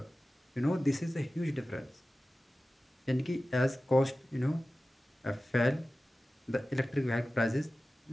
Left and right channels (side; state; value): both; normal; correlation 0.96